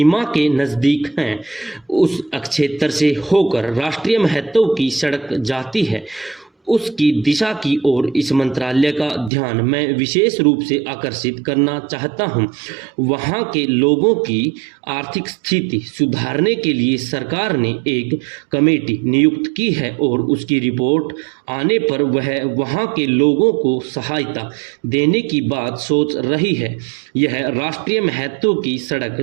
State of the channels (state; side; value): drops out; left; at 9.3 s